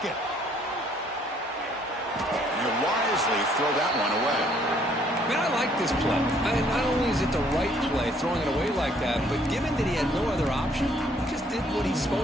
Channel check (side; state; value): both; normal; correlation 0.64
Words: And he'll wisely throw that one away. Man, I like this play. Not only is it the right play, throwing it away like that, but given that he had no other option, he just did what he's